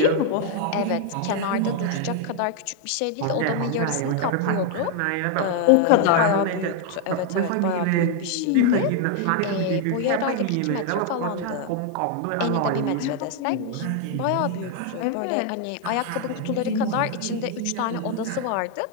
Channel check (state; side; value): different; both; correlation 0.00